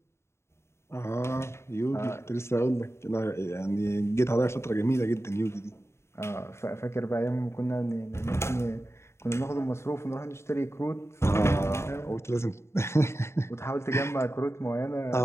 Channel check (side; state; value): right; late; 0.13 ms